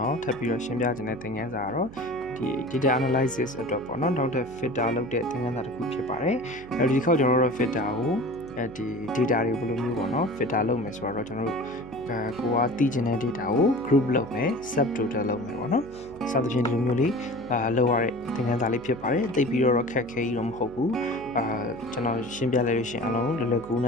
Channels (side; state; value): right; noise; hum, 18 dB below the sound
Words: ော်ထပ်ပြီးတော့ရှင်းပြခြင်းတဲ့သင်ခန်းစာကတော့ဒီ data analysis အတွက်ပေါ့နော်နောက်ထပ် filter လုပ်တဲ့သင်ခန်းစာတစ်ခုဖြစ်ပါတယ်အဲဒီတစ်ခေါက်ကျွန်တော်တို့ filter ကိုဒီ data တွေဘယ်လိုမျိုးပေါ့နော် filter လုပ်မယ်ဆိုတော့ကျွန်တော်တို့ကိုကသိချင်တဲ့ data ကို group လုပ်မယ် subtotal လုပ်မယ်ပေါ့နော်စသဖြင့်ဒီလိုမျိုးလေးလုပ်ရတဲ့သင်ခန်းစာလေးဖြစ်ပါတယ်သိပြီးတော့ခက်ခဲကြီးတော့မဟုတ်ဘူးကျွန်တော်ရှင်းပြလိုက်လို့ရှိရင်အလုံးလွယ်လွယ်ကူန